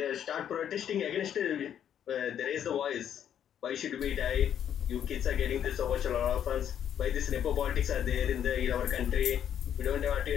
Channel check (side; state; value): right; quieter; 9.5 dB